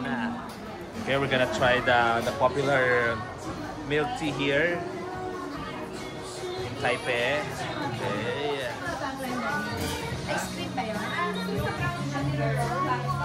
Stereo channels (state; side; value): identical; both; correlation 1.00